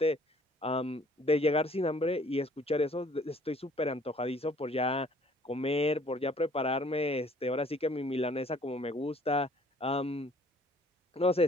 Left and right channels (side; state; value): both; normal; correlation 0.57